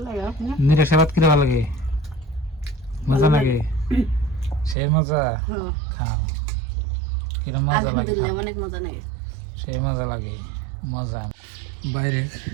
লাগে নিরাশা ভাত কিরম লাগে? মজা লাগে, সেই মজা। খাও, কিরম মজা লাগে। অনেক মজা লাগে, সেই মজা লাগে, মজা। বাইরে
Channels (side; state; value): left; drops out; at 4.8 s